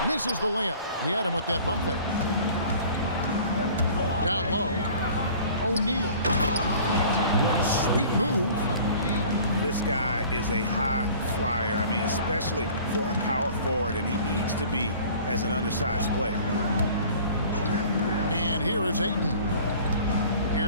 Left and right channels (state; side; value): inverted; both; correlation -0.47